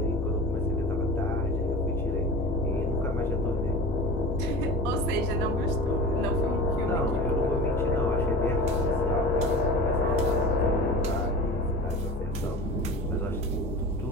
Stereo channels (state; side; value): normal; both; correlation 0.34